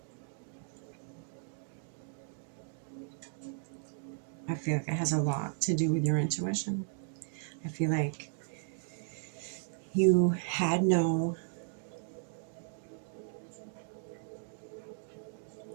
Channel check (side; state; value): left; silent; digital silence